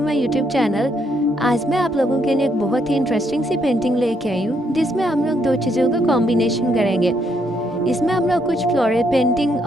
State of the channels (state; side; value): normal; both; correlation 0.74